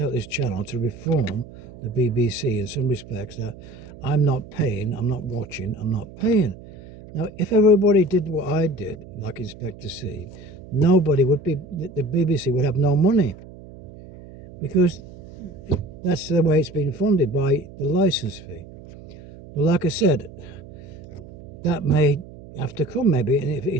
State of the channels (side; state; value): right; noise; hum, 17 dB below the sound